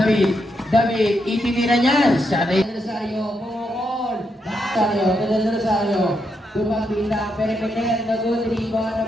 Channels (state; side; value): normal; both; correlation 0.81